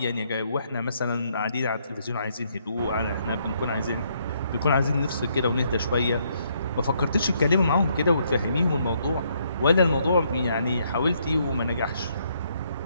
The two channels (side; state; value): both; inverted; correlation -0.72